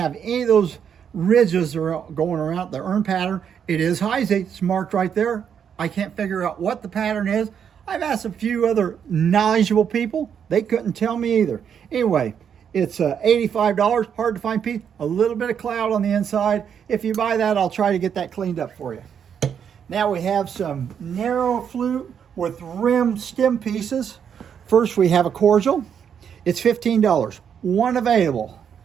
any of those ridges going around the urn pattern. It is Heisey. It's marked right there. I can't figure out what the pattern is. I've asked a few other knowledgeable people. They couldn't tell me either. Anyway, it's $85, hard to find piece, a little bit of cloud on the inside. If you buy that, I'll try to get that cleaned up for you. Now we have some narrow flute with rim stem pieces. First we have a cordial. It's $15, one available.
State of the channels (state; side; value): quieter; left; 7.9 dB